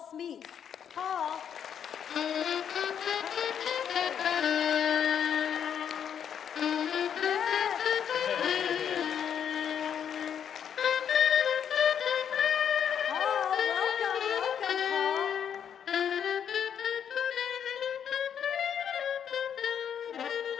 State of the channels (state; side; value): quieter; right; 8.5 dB